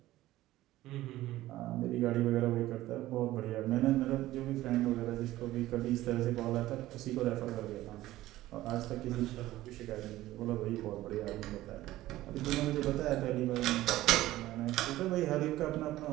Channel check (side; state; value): left; quieter; 15.8 dB